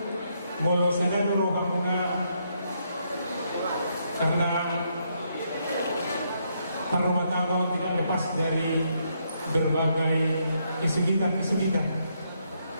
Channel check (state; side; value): inverted; both; correlation -0.76